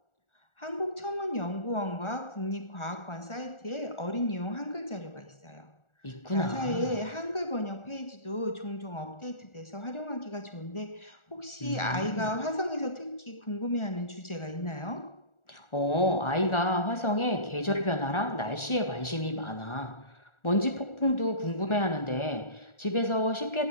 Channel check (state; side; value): late; right; 1.4 ms